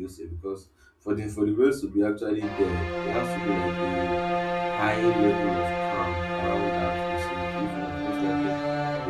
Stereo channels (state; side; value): identical; both; correlation 1.00